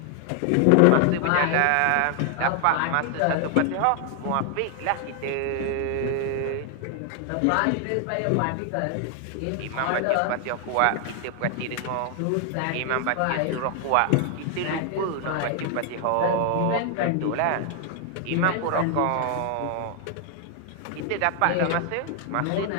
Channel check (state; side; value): different; both; correlation 0.00